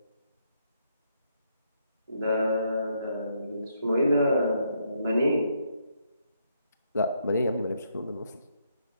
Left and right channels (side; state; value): both; inverted; correlation -0.75